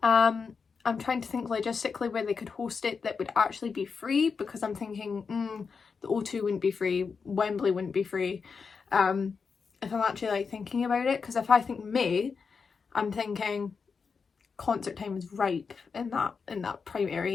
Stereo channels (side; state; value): right; quieter; 5.4 dB